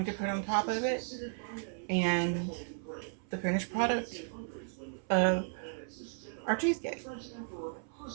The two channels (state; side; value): silent; left; 54 dB below the other